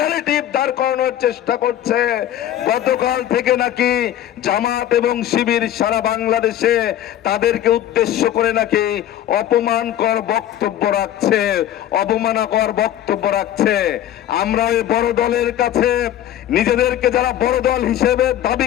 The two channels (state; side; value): quieter; right; 11.9 dB